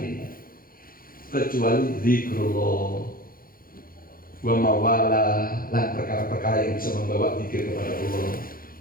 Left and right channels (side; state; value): right; late; 0.42 ms